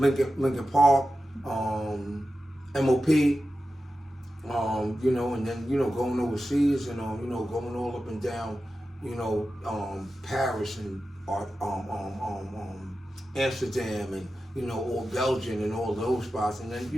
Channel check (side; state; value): both; normal; correlation 0.92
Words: Park, MOP, you know, and then, you know, going overseas and, you know, going all up and down, you know, Paris and Amsterdam and, you know, all Belgium and all those spots. And then,